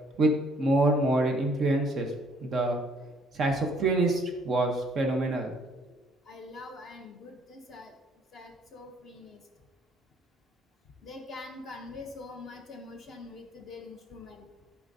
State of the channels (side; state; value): both; normal; correlation 0.63